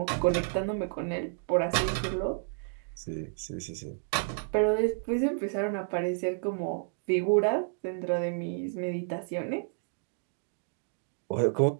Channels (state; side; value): silent; left; digital silence